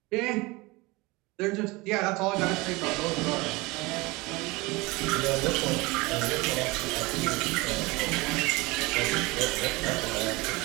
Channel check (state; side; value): quieter; left; 23.3 dB